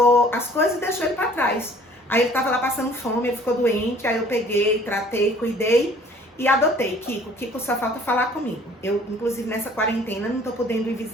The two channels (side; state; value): both; normal; correlation 0.53